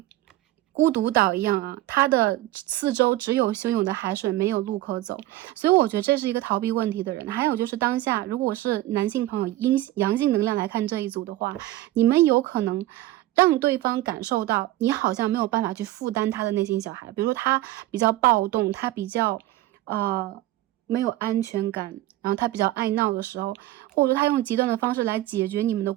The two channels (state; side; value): quieter; left; 16.0 dB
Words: 孤独岛一样它的四周只有汹涌的海水，没有路可走。所以我觉得这是一个逃避问题的人。还有就是当下如果是男性朋友阳性能量来看这一组的话，你们有可能让对方感受到你好像没有办法去负担他的内心小孩，比如说他比较暴动，他比较没有安全感，然后他比较爱闹的时候，或者说他用极端的方式来解决你们的